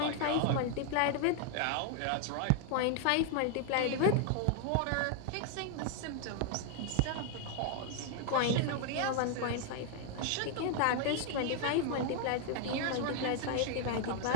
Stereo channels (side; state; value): both; different; correlation 0.00